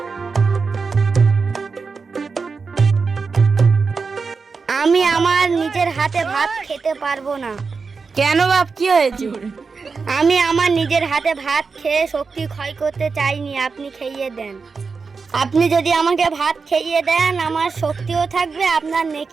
আমি আমার নিজের হাতে ভাত খেতে পারবো না। কেন বাপ, কি হয়েছে? আমি আমার নিজের হাতে ভাত খেয়ে শক্তি ক্ষয় করতে চাইনি। আপনি খেয়ে দেন। আপনি যদি আমাকে ভাত খেয়ে দেন, আমার শক্তিও থাকবে, আপনার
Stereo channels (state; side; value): quieter; left; 4.8 dB